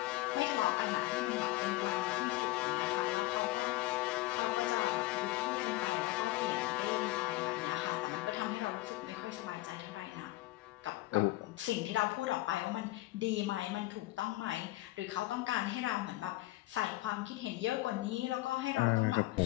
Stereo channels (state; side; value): quieter; right; 18.5 dB